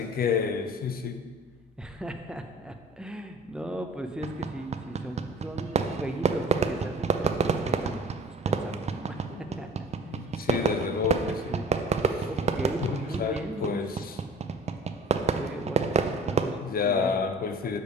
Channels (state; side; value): normal; both; correlation 0.44